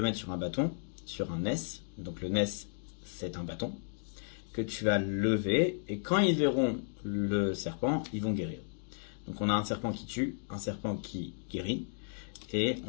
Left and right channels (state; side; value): silent; right; digital silence